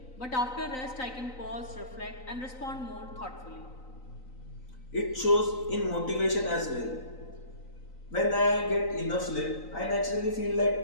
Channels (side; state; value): right; late; 3.9 ms